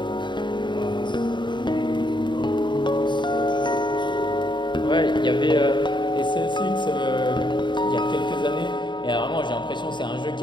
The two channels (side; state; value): right; late; 0.22 ms